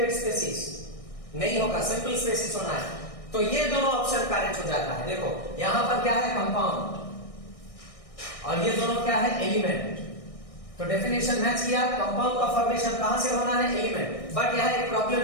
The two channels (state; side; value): late; right; 1.6 ms